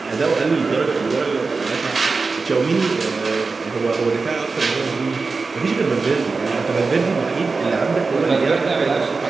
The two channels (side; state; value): left; quieter; 4.2 dB